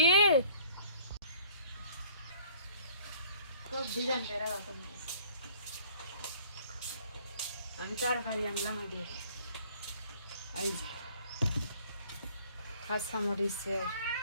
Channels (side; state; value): both; inverted; correlation -0.54